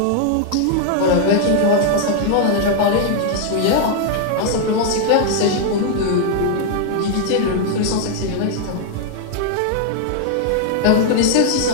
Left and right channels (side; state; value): both; different; correlation 0.00